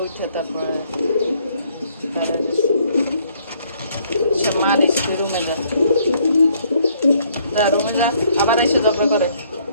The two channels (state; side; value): inverted; both; correlation -0.65